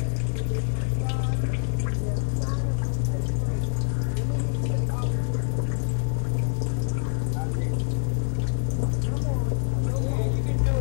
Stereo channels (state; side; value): silent; right; digital silence